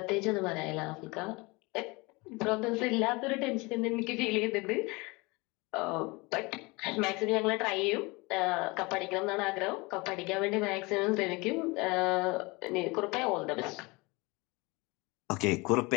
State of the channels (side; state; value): right; quieter; 25.4 dB